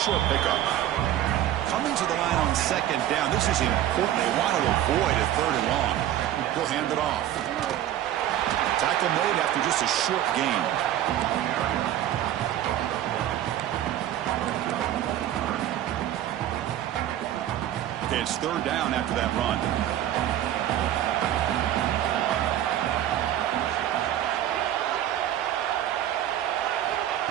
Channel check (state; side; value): quieter; left; 12.1 dB